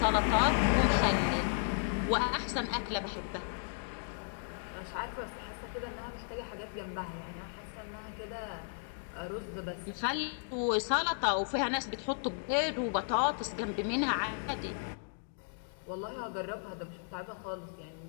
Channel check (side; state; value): right; silent; digital silence